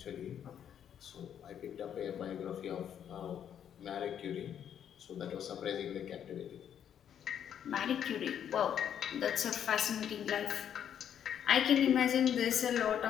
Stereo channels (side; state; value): right; quieter; 9.2 dB